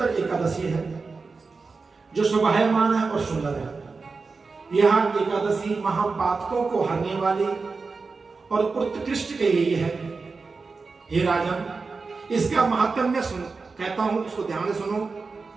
एकादशी है जो शोभायमान है और सुंदर है। यह एकादशी महापातकों को हरने वाली और उत्कृष्ट कही गई है। हे राजन, इसका महात्म्य सुन कहता हूं, उसको ध्यान से सुनो।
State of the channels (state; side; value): quieter; left; 4.3 dB